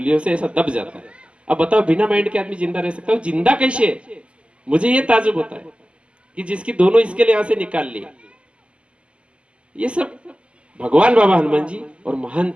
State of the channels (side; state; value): left; late; 0.059 ms